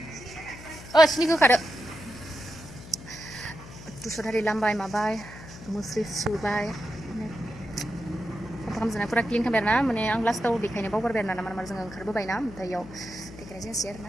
सिनि गोखादो तुसदारि लामबाय माबाय मुस्रि सुबाय साफा खालामजोबनाय फुरा क्लिन खालामबाय आरोना माने आं लास्टाव देखायनो बावगारबाय आरोना मानो जोङो ओंखारबोबाय ना ओमफ्राय इयाव देखायनाय जायासै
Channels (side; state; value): left; noise; hum, 16 dB below the sound